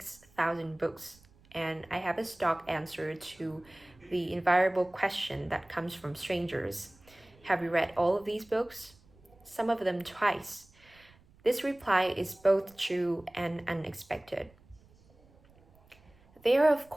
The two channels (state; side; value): noise; right; rumble, 28 dB below the sound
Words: books, and I have a stock answer to the invariable question that comes from strangers. Have you read all of these books? Some of them twice. This reply is both true and unexpected. There are, of